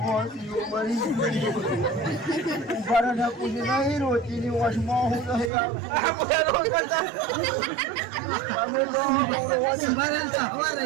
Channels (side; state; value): left; drops out; at 5.5 s